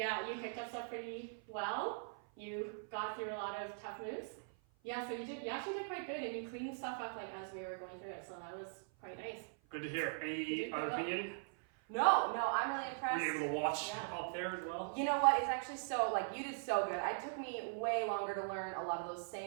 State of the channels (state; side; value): silent; left; 50 dB below the other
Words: you picked up stuff pretty well. You got through a lot of tough moves. Yeah, so you actually did quite good, and you cleaned stuff up like as we were going through it, so that was quite nice. Good to hear. You Any did other well. opinion? No, I'm really Were impressed. you able to watch Yeah. up there as well? You know what? It's actually so, like, you did so good. It took me way longer to learn a lot of those